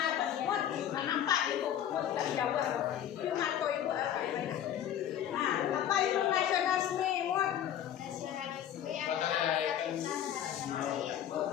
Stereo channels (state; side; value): quieter; right; 10.4 dB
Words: Mut, nampak itu. Mut dari Jawa. Itu Marco itu. Nah, apa itu nasionalisme? Mut. Nasionalisme